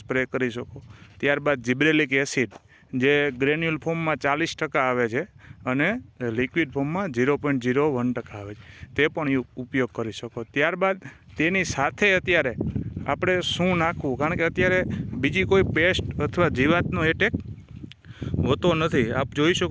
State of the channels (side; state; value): both; identical; correlation 1.00